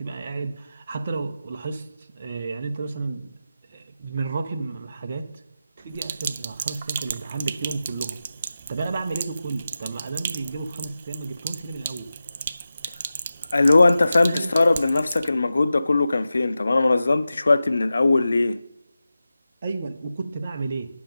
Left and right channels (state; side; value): inverted; both; correlation -0.93